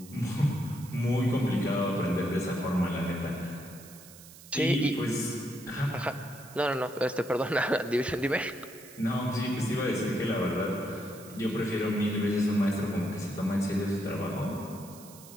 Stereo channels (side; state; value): right; noise; hiss, 19 dB below the sound